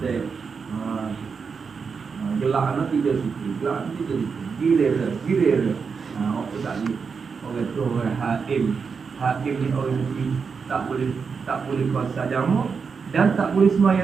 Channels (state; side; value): quieter; left; 5.6 dB